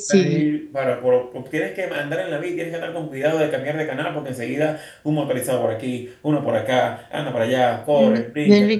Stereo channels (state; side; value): identical; both; correlation 1.00